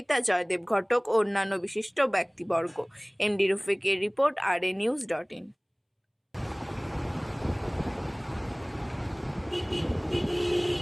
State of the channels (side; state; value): both; identical; correlation 1.00